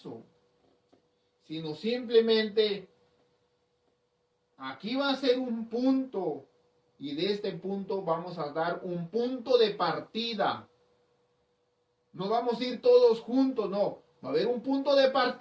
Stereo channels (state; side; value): identical; both; correlation 1.00